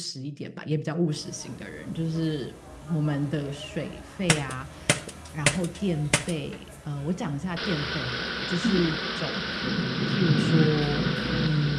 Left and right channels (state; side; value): identical; both; correlation 1.00